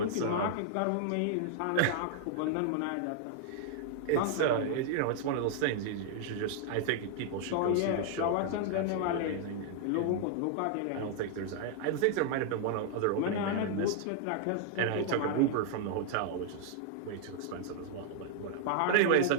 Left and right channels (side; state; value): both; different; correlation 0.00